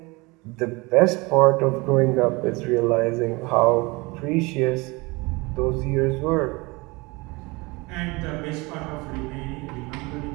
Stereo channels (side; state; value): left; quieter; 24.9 dB